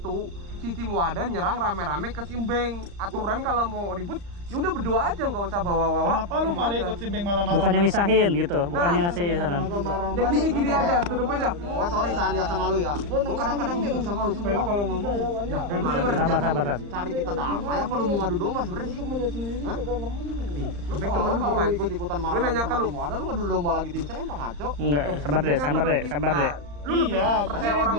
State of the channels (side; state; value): left; late; 35 ms